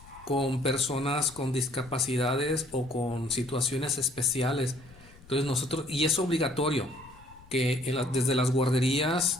con personas con discapacidades o con situaciones especiales. Entonces nosotros, y es obligatorio que desde las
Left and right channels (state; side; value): noise; left; rumble, 23 dB below the sound